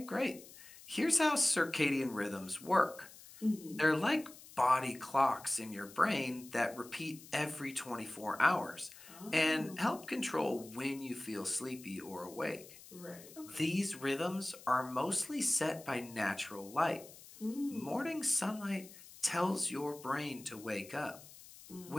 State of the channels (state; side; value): noise; left; hiss, 19 dB below the sound